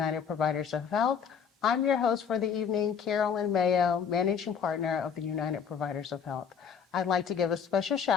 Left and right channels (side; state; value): right; quieter; 7.0 dB